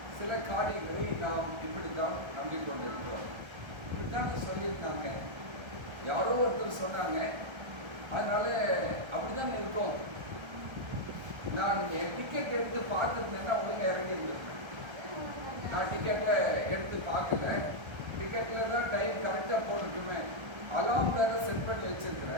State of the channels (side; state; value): left; late; 1.3 ms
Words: சில காரியங்களை நாம் இப்படித்தான் நம்பிக்கொண்டிருக்கிறோம். இப்படித்தாங்க சொல்லியிருந்தாங்க, யாரோ ஒருத்தர் சொன்னாங்க, அதனால அப்படிதான் இருக்கும். நான் என் டிக்கெட் எடுத்து பார்த்துருந்தேன்னா ஒழுங்காக இறங்கி இருந்திருப்பேன். நான் டிக்கெட்ல எடுத்து பார்க்கல. டிக்கெட்ல தான் டைம் கரெக்டாக போட்டுட்டுமே. அலாம் வேற செட் பண்ணி